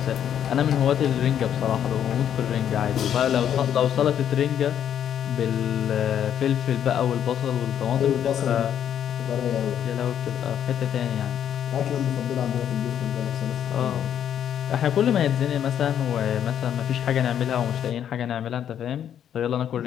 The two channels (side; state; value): right; quieter; 9.6 dB